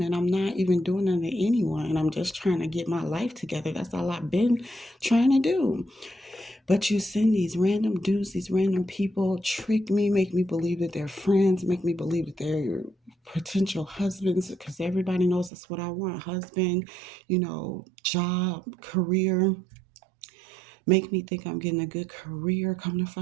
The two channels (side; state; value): left; drops out; at 15.5 s